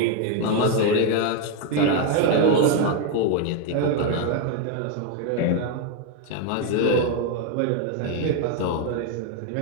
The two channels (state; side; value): different; both; correlation 0.01